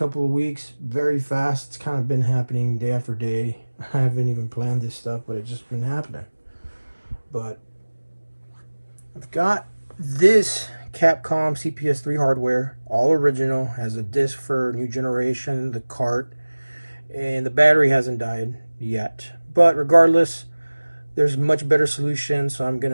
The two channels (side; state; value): both; inverted; correlation -1.00